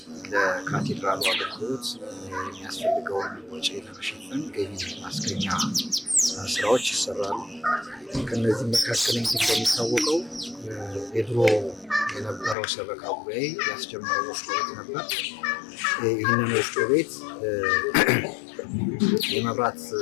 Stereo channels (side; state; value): right; drops out; at 12.6 s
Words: ለካቴድራሉ አገልግሎት የሚያስፈልገውን ወጪ ለመሸፈን ገቢ ማስገኛ ስራዎች ይሰራሉ። ከነዚህ መካከል እንግዲህ እንደሚታወቀው የድሮ የነበረው ሰበካ ጉባኤ ያስጀመረው ወፍጮ ቤት ነበር። ይህንን ወፍጮ ቤት የመብራት